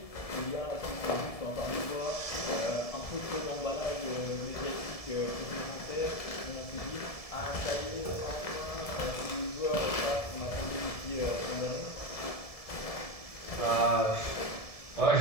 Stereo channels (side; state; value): right; late; 1.7 ms